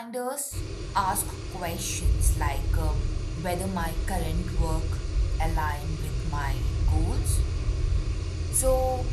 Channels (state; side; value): identical; both; correlation 1.00